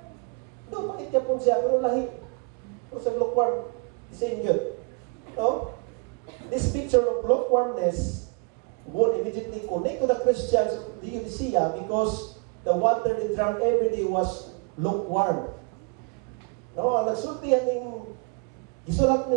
doon pait ka po siya, pero lahi. Kung sa lukewarm, same yun. No? This picture of lukewarmness would immediately connect to the Christians of the Laodicea because the water they drank every day was lukewarm. No, ang nagsultihan ng isulat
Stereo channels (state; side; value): quieter; left; 33.1 dB